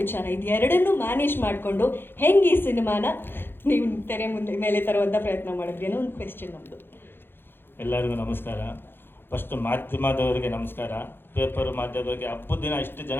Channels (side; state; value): right; late; 0.10 ms